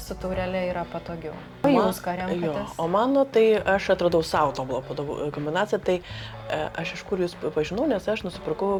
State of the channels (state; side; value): identical; both; correlation 1.00